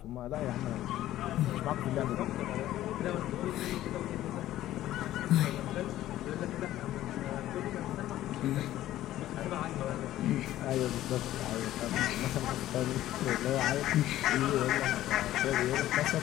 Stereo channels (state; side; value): quieter; right; 13.9 dB